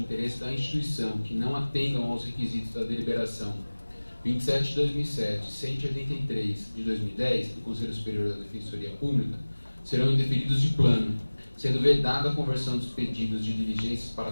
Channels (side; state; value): both; inverted; correlation -1.00